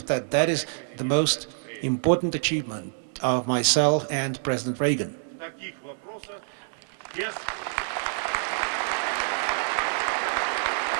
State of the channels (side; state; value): left; silent; 60 dB below the other